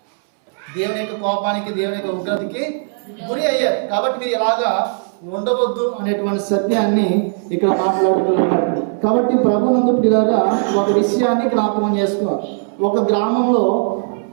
దేవుని యొక్క కోపానికి, దేవుని యొక్క ఉగ్రతకి గురి అయ్యారు. కాబట్టి మీరు ఇలాగా ఉండవద్దు అనేటువంటి సత్యాన్ని ఇక్కడ మాట్లాడుతున్నారు. కాబట్టి ప్రభునందు పిల్లరా ఒక విషయాన్ని జ్ఞాపకం చేసుకోవాలి. ఒక గ్రామంలో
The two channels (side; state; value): left; silent; 67 dB below the other